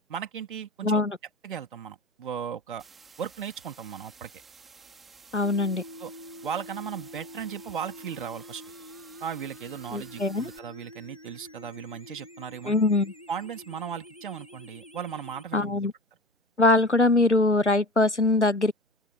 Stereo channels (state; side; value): normal; both; correlation 0.33